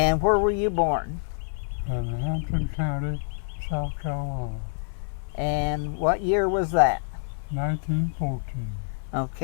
where were you born? In Hampton County, South Carolina. And what year was that? 1914.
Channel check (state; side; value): silent; right; digital silence